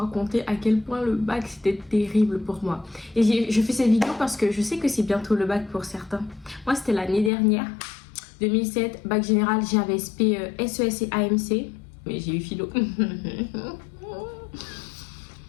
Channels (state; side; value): drops out; right; at 7.3 s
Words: à quel point le bac c'était terrible pour moi. Et je fais cette vidéo parce que je sais que c'est bientôt le bac pour certains. Moi, c'était l'année dernière, 2007, bac général, j'avais SP, SES et AMC. Mais j'ai eu philo.